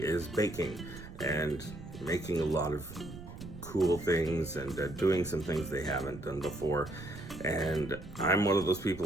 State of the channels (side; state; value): right; noise; rumble, 14 dB below the sound